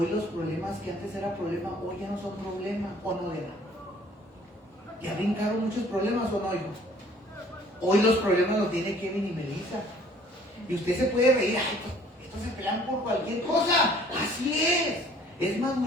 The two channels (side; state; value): both; normal; correlation 0.56